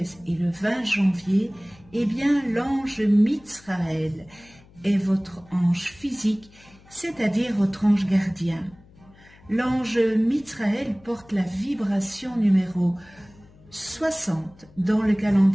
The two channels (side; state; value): left; noise; hum, 26 dB below the sound